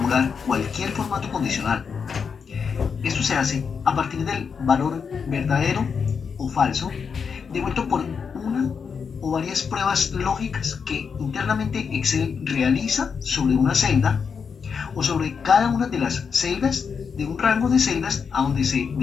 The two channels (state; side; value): quieter; right; 6.1 dB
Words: cualquier formato condicional. Esto se hace a partir del valor verdadero o falso devuelto por una o varias pruebas lógicas que internamente Excel realiza sobre una celda o sobre cada una de las celdas de un rango de celdas a donde se